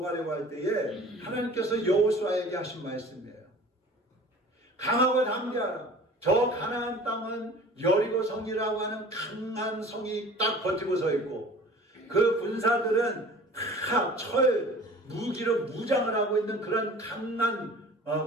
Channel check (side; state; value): both; normal; correlation 0.45